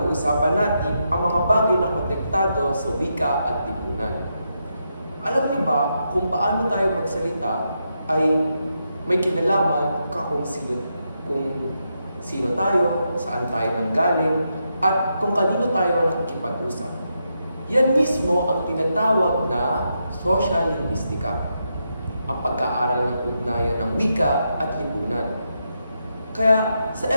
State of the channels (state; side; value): inverted; both; correlation -0.83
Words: natin ang mga bagay na konektado sa wika at lipunan. Alam niyo ba kung paano tayo magsalita ay may kinalaman kung sino tayo, saan tayo nanggaling, at kung kanino tayo nakikipag-usap. Yan mismo ang tinatawag na social linguistica, ang pagkaaral ng ugnayan ng wika at lipunan. Kaya sa